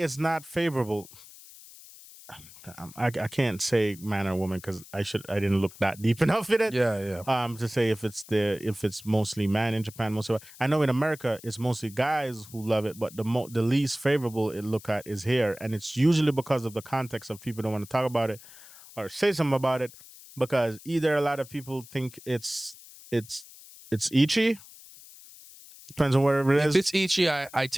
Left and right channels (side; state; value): left; noise; hiss, 19 dB below the sound